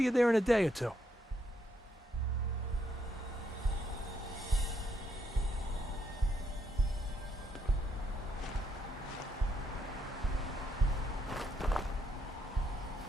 you there in a day or two.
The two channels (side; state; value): both; normal; correlation 0.75